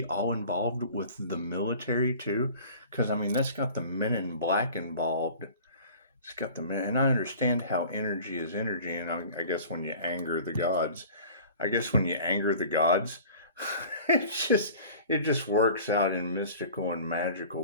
all involved with the military too? Because, I mean, that's got the men in black involved. It's got the men, and I understand how energy is energy, and I guess when you anger the gods, it just works out in mystical and magical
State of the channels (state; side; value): inverted; both; correlation -0.43